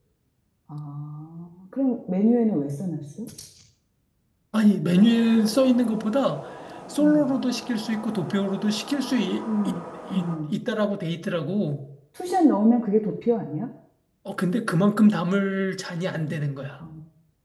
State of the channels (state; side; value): identical; both; correlation 1.00